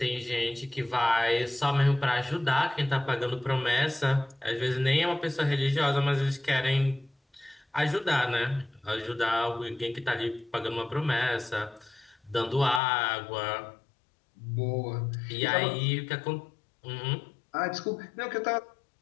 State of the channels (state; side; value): drops out; right; at 12.8 s